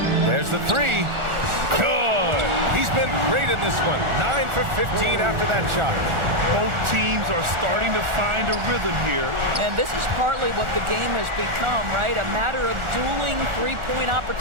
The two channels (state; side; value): late; left; 1.4 ms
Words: There's the 3. Good. He's been great in this one. 9 for 15 after that shot. Both teams are starting to find a rhythm here. And this is partly what the game has become, right? A matter of dueling three-point